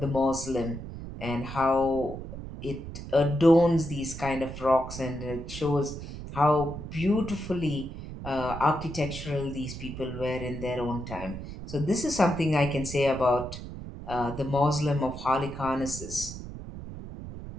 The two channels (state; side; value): noise; right; rumble, 10 dB below the sound